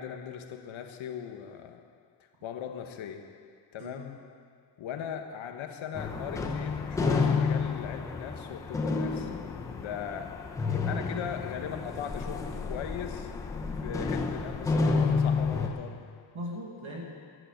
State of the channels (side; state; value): right; quieter; 4.5 dB